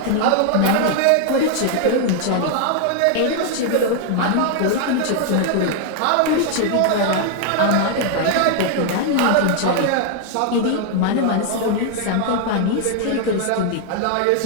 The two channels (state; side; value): different; both; correlation 0.00